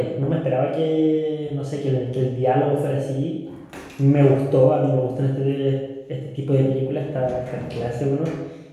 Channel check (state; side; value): identical; both; correlation 1.00